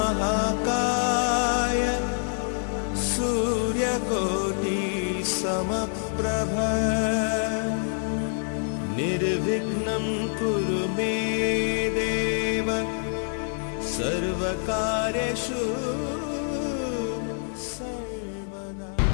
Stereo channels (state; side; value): silent; right; digital silence